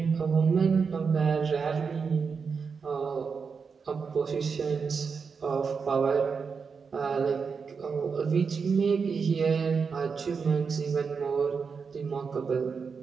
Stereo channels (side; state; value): left; quieter; 5.5 dB